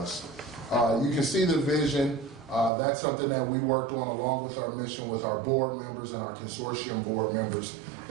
You can see the vision. That's something that we worked on along with our mission with our board members and our consortium board members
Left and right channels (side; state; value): left; drops out; at 2.7 s